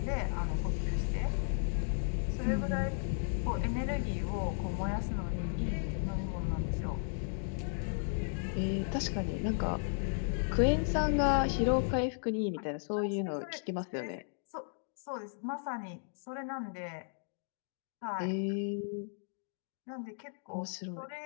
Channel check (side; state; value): right; silent; digital silence